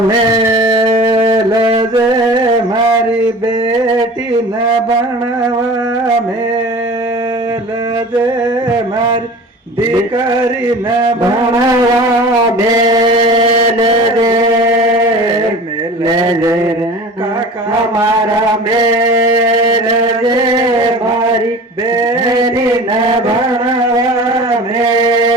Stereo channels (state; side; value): normal; both; correlation 0.39